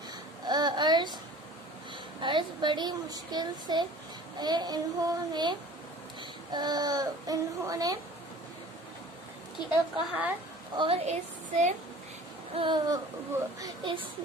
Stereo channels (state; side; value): normal; both; correlation 0.44